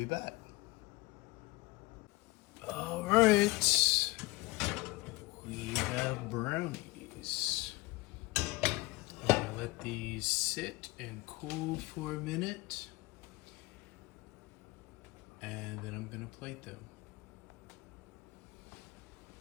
back. All right, we have brownies. I'm gonna let these sit and cool for a minute, and then I'm gonna plate them.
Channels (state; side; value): quieter; right; 21.8 dB